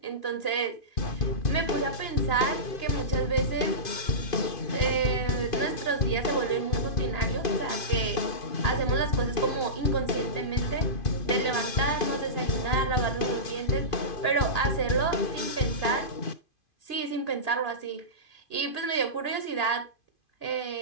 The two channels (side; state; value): right; late; 2.5 ms